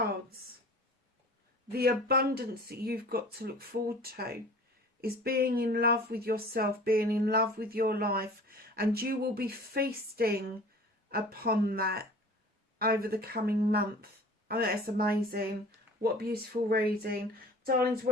the abundance that you've got to look forward to is being in love with yourself, being in love with your life, and you will be feasting upon that over the coming month. Oh, that's amazing. What a beautiful reading. Darlings,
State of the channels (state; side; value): normal; both; correlation 0.44